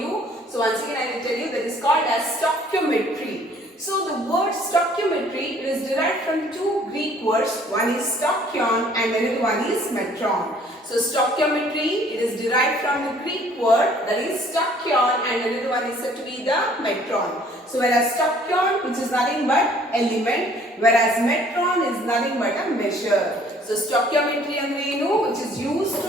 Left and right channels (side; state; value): both; normal; correlation 0.57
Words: So once again I will tell you that is called as stoichiometry. So the word stoichiometry is derived from two Greek words. One is stoichion and another one is metron. So stoichiometry, it is derived from the Greek word that is stoichion and another one is said to be the metron. So whereas stoichion, which is nothing but element, whereas metron is nothing but a measure. So stoichiometry and which is used